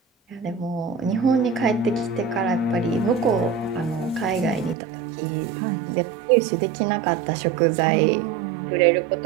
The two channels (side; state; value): left; drops out; at 4.8 s